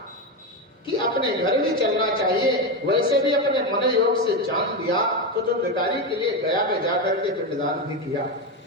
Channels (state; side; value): normal; both; correlation 0.13